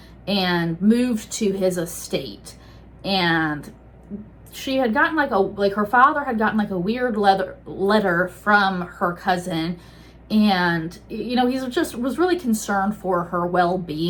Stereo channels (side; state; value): both; identical; correlation 1.00